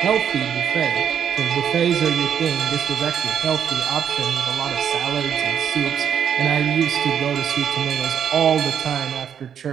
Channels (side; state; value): left; quieter; 8.4 dB